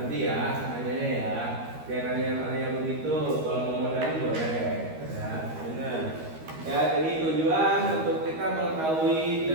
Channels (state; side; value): late; left; 13 ms